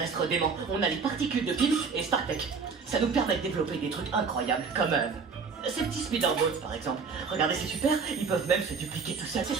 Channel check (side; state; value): left; quieter; 5.3 dB